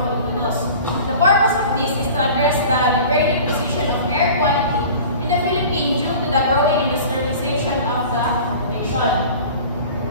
Filipinos. The purpose of this is to address the degrading position of air quality in the Philippines due to the growing industrialization of the nation.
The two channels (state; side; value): inverted; both; correlation -0.41